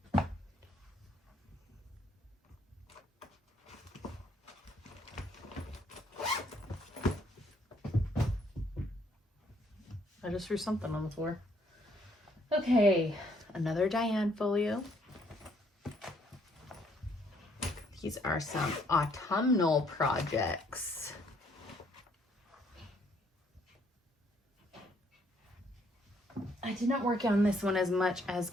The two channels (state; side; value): normal; both; correlation 0.67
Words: I just threw something on the floor. Okay, another Diane folio. These are some autumnal projects. I did not work on this one as much as